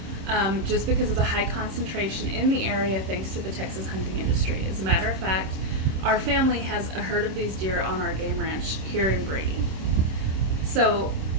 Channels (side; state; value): left; late; 26 ms